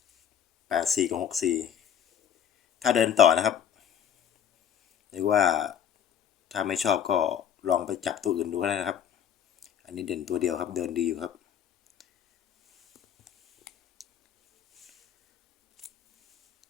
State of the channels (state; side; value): quieter; right; 8.8 dB